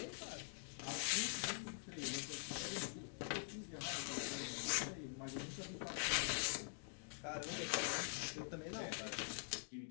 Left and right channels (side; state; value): right; silent; digital silence